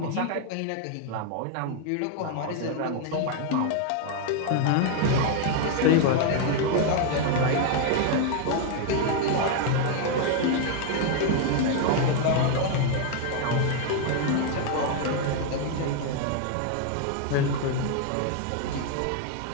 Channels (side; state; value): both; different; correlation 0.00